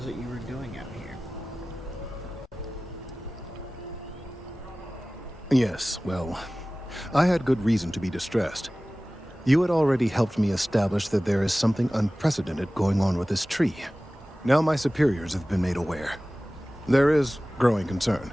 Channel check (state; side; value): normal; both; correlation 0.97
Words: it you were doing out here? Yes, well, I had good reason to be distressed. You had already helped me establish that there is something unprecedented going on with this tree. Now my superiors have been made aware. There is growing concern.